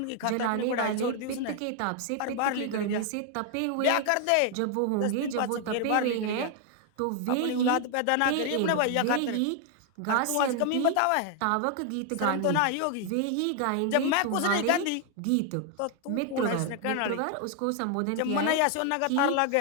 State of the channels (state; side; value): different; both; correlation 0.00